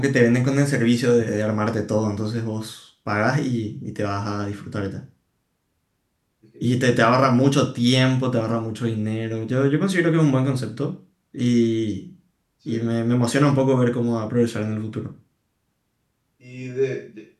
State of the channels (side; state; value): both; identical; correlation 1.00